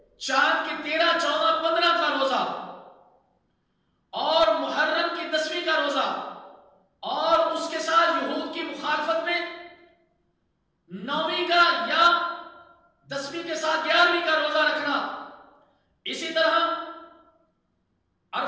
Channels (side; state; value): both; identical; correlation 1.00